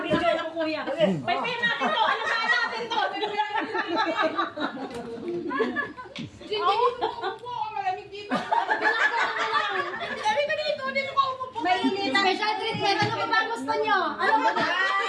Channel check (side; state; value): both; identical; correlation 1.00